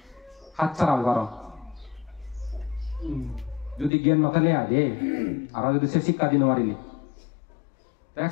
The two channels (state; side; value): drops out; right; at 3.9 s